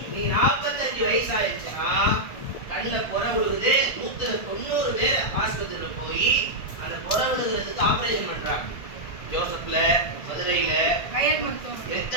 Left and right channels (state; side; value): late; right; 1.7 ms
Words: நீ 45 வயசு ஆயிடுச்சுன்னா கண்ணுல புற விழுகுது. 190 பேர் ஆஸ்பத்திரியில போய் அந்த புற விழுகிறதுக்கு ஆபரேஷன் பண்றாங்க. ஜோசப்ல, மதுரையில,